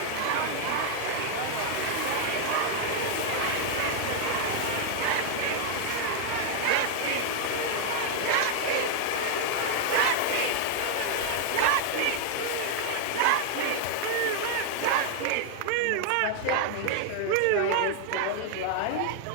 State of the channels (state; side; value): different; both; correlation 0.00